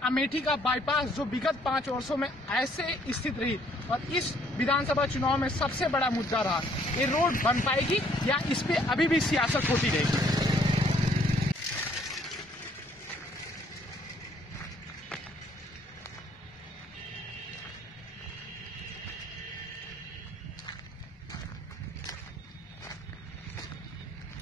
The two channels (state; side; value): normal; both; correlation 0.64